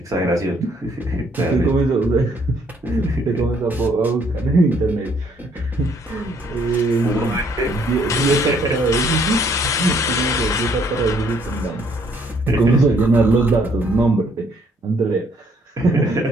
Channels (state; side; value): normal; both; correlation 0.66